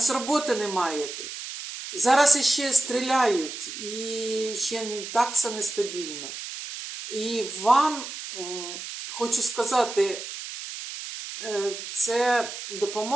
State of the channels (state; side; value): noise; right; hiss, 9 dB below the sound